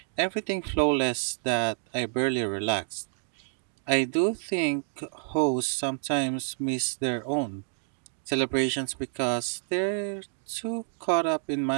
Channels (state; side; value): silent; left; digital silence